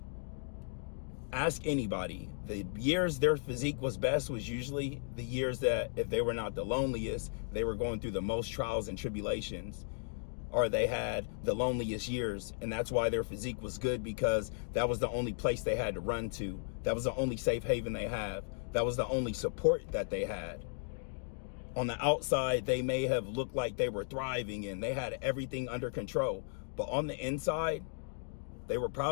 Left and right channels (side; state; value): right; silent; digital silence